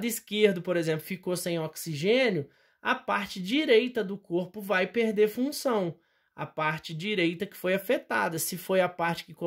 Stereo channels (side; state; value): both; identical; correlation 1.00